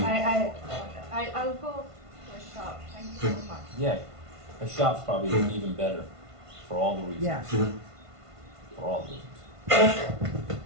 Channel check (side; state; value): left; late; 1.5 ms